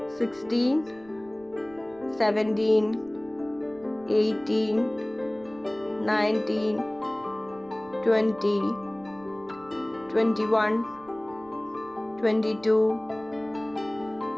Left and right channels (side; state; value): right; noise; rumble, 27 dB below the sound